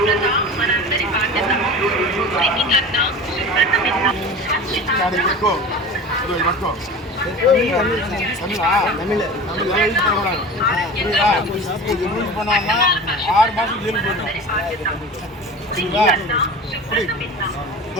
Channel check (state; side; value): normal; both; correlation 0.35